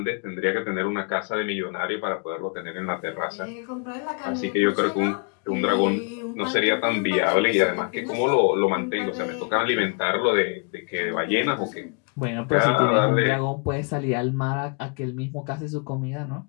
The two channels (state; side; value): quieter; right; 36.9 dB